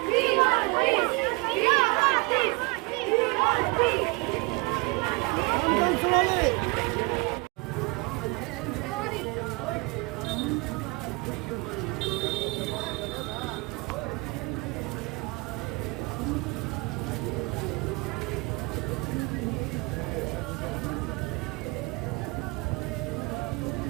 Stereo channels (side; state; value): left; quieter; 27.1 dB